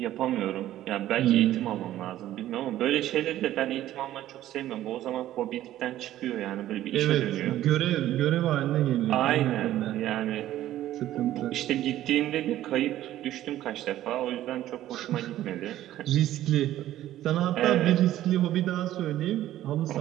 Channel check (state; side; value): quieter; left; 13.4 dB